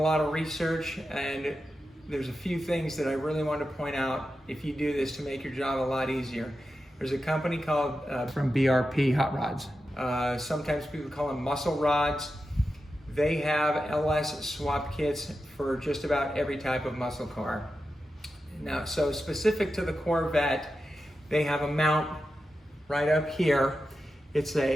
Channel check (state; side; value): normal; both; correlation 0.91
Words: of research, and there's a few things that I really want to point out if you do this to make your job a lot easier. There's a company called from BRP Hot Rods. Sometimes people call them muscle rods. They have LS swap kits for just about every type of muscle car. Now, so specific to the Corvette, they have a mount right up here. It's